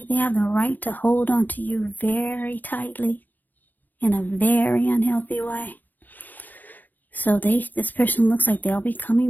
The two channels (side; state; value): right; late; 0.085 ms